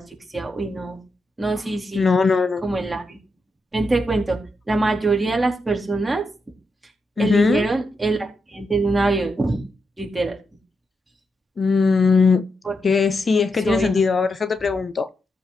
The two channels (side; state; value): both; normal; correlation 0.84